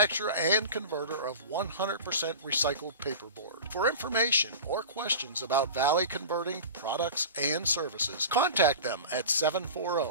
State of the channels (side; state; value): both; inverted; correlation -0.34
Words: and converter of 100% recycled paperboard. For information or questions about Valley Converting products and services, contact them at